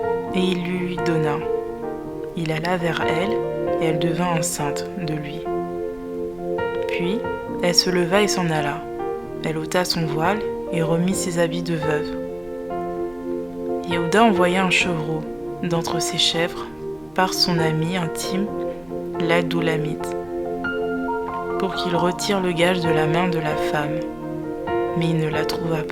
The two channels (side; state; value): right; noise; hum, 29 dB below the sound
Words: » Et il lui donna. Il alla vers elle, et elle devint enceinte de lui. Puis, elle se leva et s'en alla. Elle ôta son voile et remit ses habits de veuve. Yehuda envoya un chevreau d'entre ses chèvres par son ami intime, l'Adoulamite, pour qu'il retire le gage de la main de la femme. Mais il ne la trouva